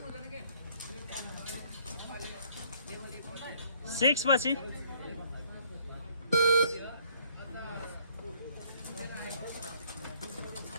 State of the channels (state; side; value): inverted; both; correlation -0.62